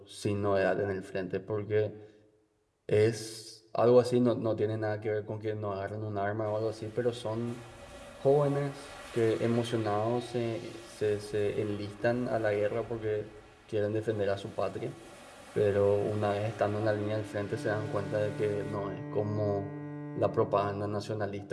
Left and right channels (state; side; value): identical; both; correlation 1.00